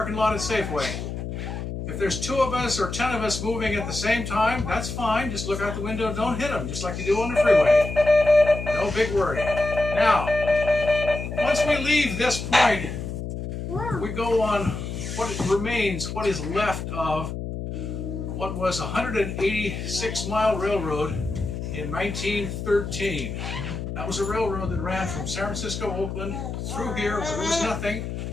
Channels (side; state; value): left; noise; hum, 6 dB below the sound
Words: lot at Safeway. If there's 2 of us or 10 of us moving at the same time, that's fine. Just look out the window and don't hit them, just like you do on the freeway. No big worry. Now, once we leave this point, we go on what remains, what is left of what was a 186-mile railroad in 1913. That was a railroad that ran from San Francisco, Oakland, through here where there was nothing,